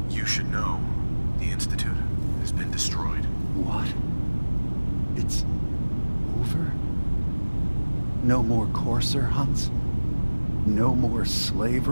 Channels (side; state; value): both; inverted; correlation -1.00